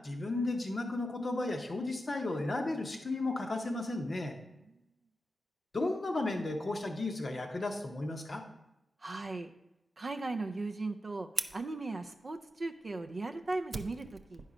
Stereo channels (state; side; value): normal; both; correlation 0.89